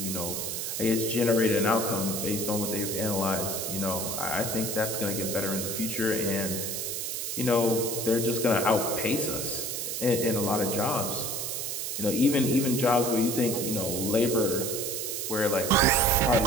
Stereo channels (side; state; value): right; noise; hiss, 3 dB below the sound